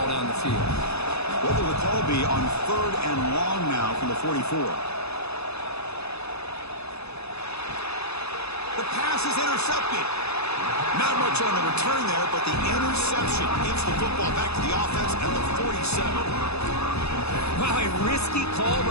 down the field. What will the call be on third and long now from the 44? The pass is intercepted. Not much on the return there, but the interception gives the football back to the offense at the 47. Wow, a risky call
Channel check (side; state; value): right; late; 0.79 ms